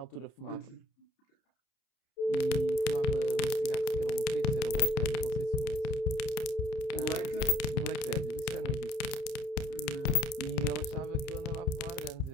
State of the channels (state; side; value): late; right; 30 ms